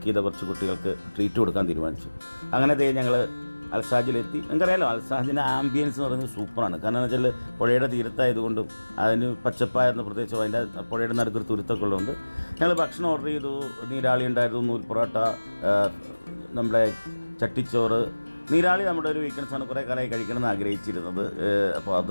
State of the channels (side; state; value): both; inverted; correlation -1.00